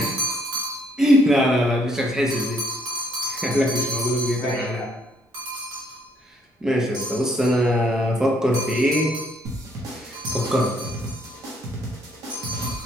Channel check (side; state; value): both; normal; correlation 0.67